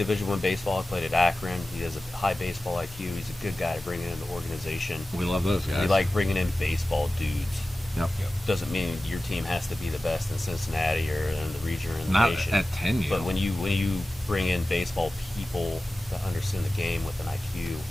I baseball. He played at Akron. He has a high baseball IQ. He's a good guy to bring into the organization. We love those guys. We like bringing in baseball dudes. Yep. Doesn't mean your team has to be the best in Cincinnati or in the region or in the Not nation. at 10U. But when you bring in baseball people that understand the game with an IQ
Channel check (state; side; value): normal; both; correlation 0.95